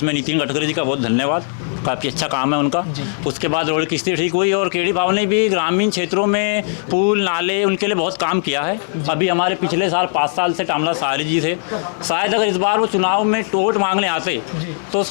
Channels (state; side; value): silent; right; digital silence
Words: नितिन गडकरी जी का बहुत धन्यवाद, काफ़ी अच्छा काम है उनका। उसके बाद रोड की स्थिति ठीक हुई और केडी बाबू ने भी ग्रामीण क्षेत्रों में पुल नाले उनके लिए बहुत काम किया है। अभी हमारे पिछले साल 5 साल से टामला सारी जी थे, शायद अगर इस बार वो चुनाव में वोट मांगने आते तो